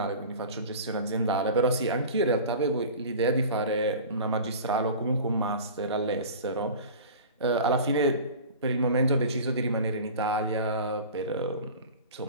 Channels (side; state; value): both; inverted; correlation -0.37